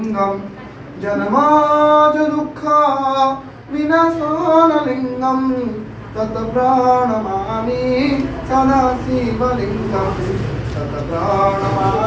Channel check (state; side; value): identical; both; correlation 1.00